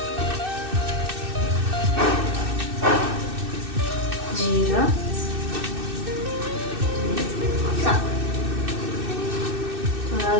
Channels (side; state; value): left; late; 2.6 ms